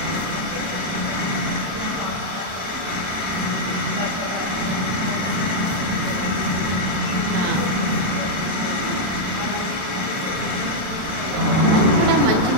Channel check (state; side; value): late; left; 32 ms